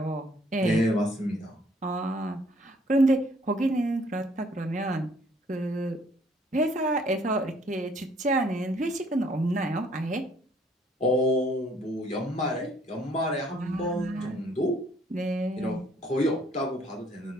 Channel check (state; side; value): normal; both; correlation 0.62